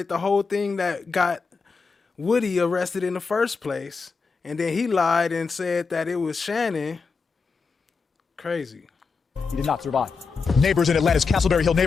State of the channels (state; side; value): quieter; right; 4.9 dB